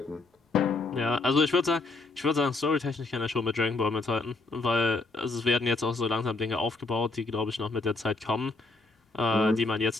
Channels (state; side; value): quieter; right; 3.4 dB